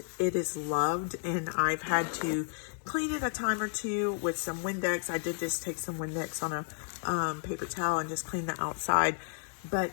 it is loved. And I've had to clean it a time or two with some Windex. I did just take some Windex on a paper towel and just clean the outside. But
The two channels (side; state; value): right; silent; digital silence